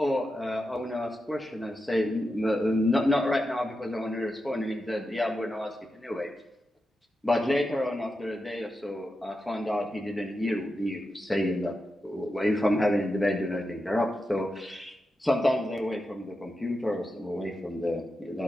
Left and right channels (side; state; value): both; normal; correlation 0.89